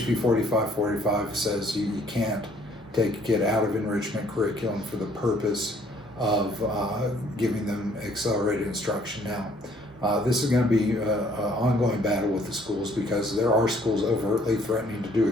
4545 says you can't take a kid out of enrichment curriculum for the purpose of giving them accelerated instruction. Now, this is going to be an ongoing battle with the schools, because there are schools overtly threatening to do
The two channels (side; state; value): both; normal; correlation 0.62